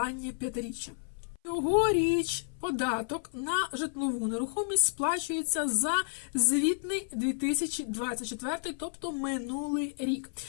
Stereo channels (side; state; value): right; silent; 56 dB below the other